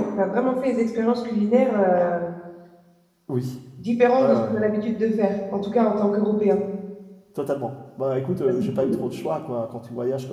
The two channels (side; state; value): both; identical; correlation 1.00